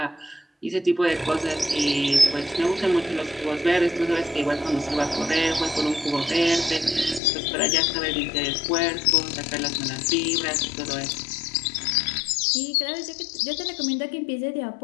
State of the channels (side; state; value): right; drops out; at 7.2 s